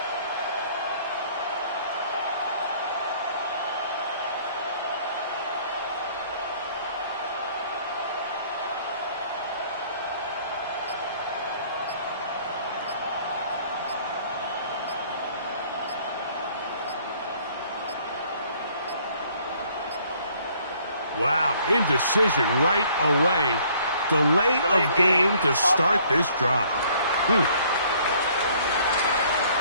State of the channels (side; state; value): both; inverted; correlation -0.59